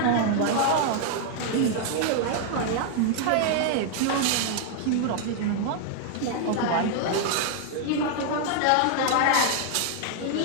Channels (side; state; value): both; different; correlation 0.00